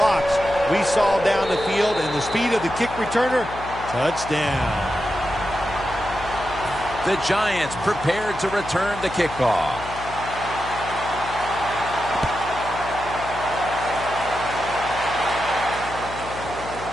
we saw down the field and the speed of the kick returner. Touchdown. The Giants prepared to return the kickoff.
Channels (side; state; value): left; noise; hum, 13 dB below the sound